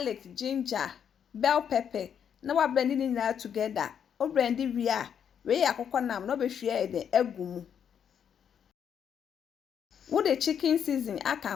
ginger, bell pepper. Now I blending it now together. O blend we are. We akoko nam no be hwe de agumu. Wo the chicken season aka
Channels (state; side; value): quieter; right; 8.2 dB